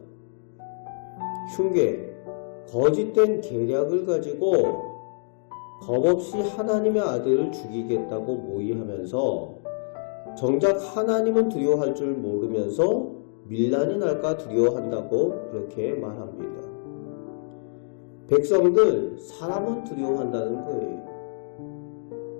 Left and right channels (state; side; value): silent; right; digital silence